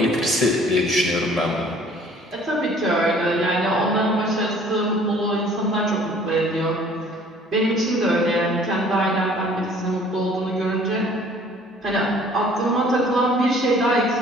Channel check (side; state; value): both; normal; correlation 0.54